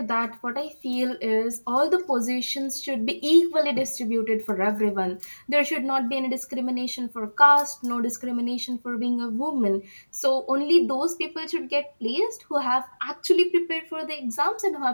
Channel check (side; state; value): both; inverted; correlation -1.00